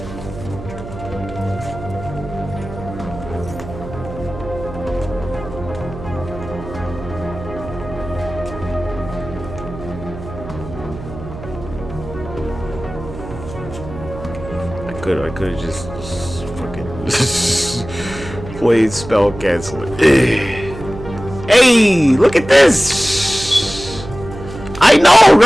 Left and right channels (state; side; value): noise; right; hum, 12 dB below the sound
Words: I could have just fucking played spell canceling. Hey, look at this! I know,